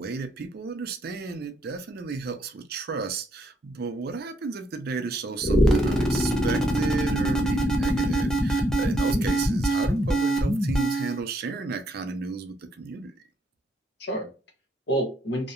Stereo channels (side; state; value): both; normal; correlation 0.73